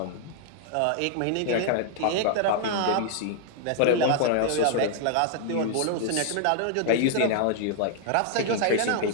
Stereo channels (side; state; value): both; different; correlation 0.00